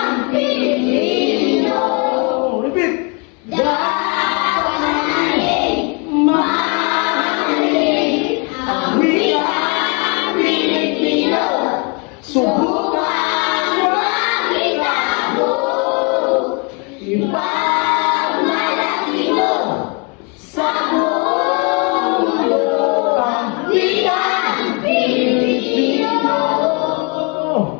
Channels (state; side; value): quieter; right; 32.4 dB